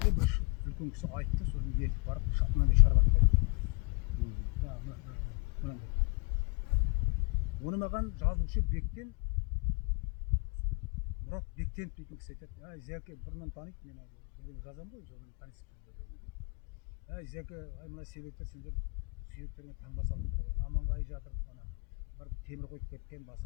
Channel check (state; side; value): quieter; right; 31.1 dB